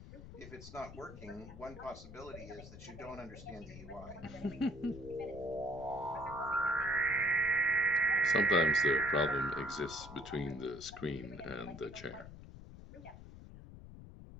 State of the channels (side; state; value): left; noise; rumble, 15 dB below the sound